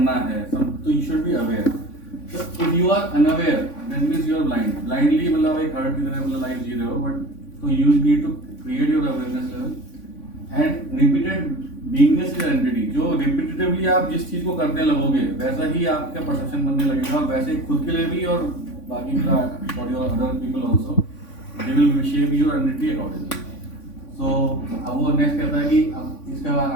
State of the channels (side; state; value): right; late; 3.5 ms